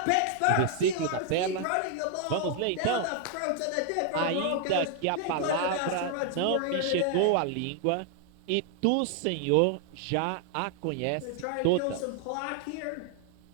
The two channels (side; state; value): both; different; correlation 0.00